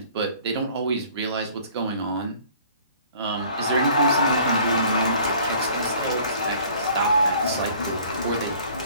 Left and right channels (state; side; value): inverted; both; correlation -0.53